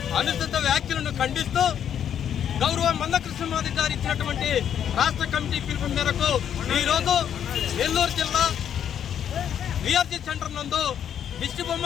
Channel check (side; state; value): right; quieter; 9.2 dB